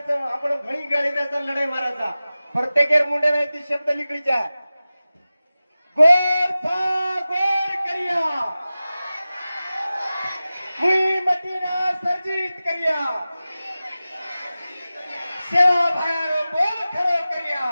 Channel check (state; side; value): inverted; both; correlation -0.96